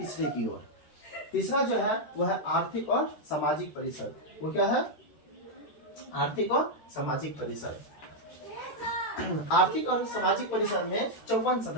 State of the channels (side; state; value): right; late; 13 ms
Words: की ओर। तीसरा जो है वह है आर्थिक और सामाजिक परिषद। वो क्या है? आर्थिक और सामाजिक परिषद। आर्थिक और सामाजिक परिषद में 54